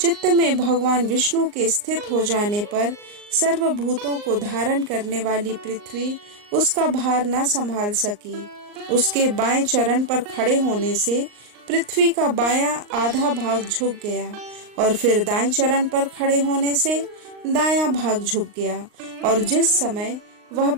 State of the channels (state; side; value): late; left; 39 ms